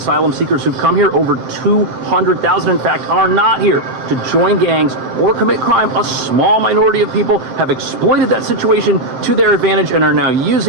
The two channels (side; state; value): left; late; 7.7 ms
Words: seekers who've come here, over 200,000 in fact, are not here to join gangs or commit crime, a small minority of people have exploited that situation to their advantage and are now